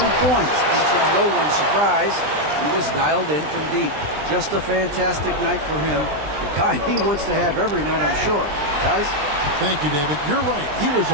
points, and to no one's surprise, he was dialed in from deep. Just a fantastic night for him, the kind he wants to have every night, I'm sure. Guys? Thank you, David. You're right. He was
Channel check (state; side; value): late; left; 20 ms